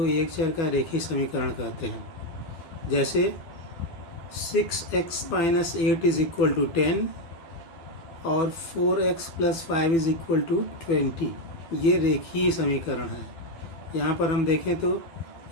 एक चर का रेखीय समीकरण कहते हैं। जैसे 6x - 8 = 10 और 4x + 5 = 20, ये रेखीय समीकरण है। यहाँ पर हम देखें तो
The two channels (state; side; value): late; right; 12 ms